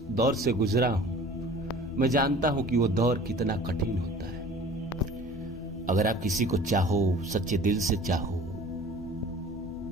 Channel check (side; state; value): both; normal; correlation 0.45